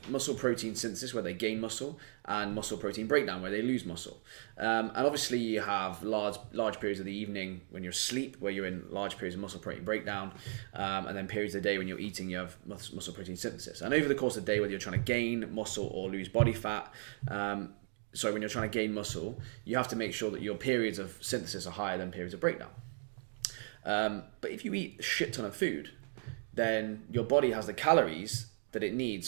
muscle protein synthesis, where they gain muscle, and muscle protein breakdown, where they lose muscle. And obviously you have large periods of the evening when you're asleep, where you're in large periods of muscle protein breakdown, and then periods of the day when you're eating, you have muscle protein synthesis. And over the course of the day, whether you're trying to gain muscle or lose body fat, when you're trying to gain muscle, you have to make sure that your periods of synthesis are higher than periods of breakdown. But if you eat a shit ton of food, then your body has the calories that it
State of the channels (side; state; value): left; silent; 54 dB below the other